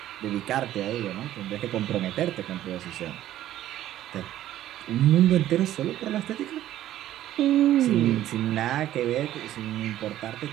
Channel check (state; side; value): quieter; left; 13.1 dB